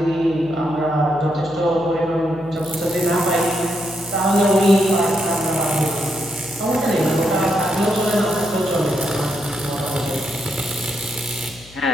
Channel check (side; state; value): left; noise; hum, 22 dB below the sound